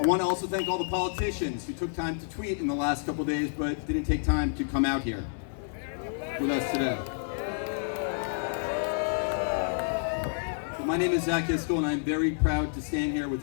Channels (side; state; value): right; silent; 58 dB below the other